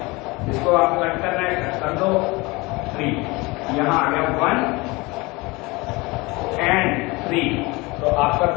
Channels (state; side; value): quieter; right; 24.0 dB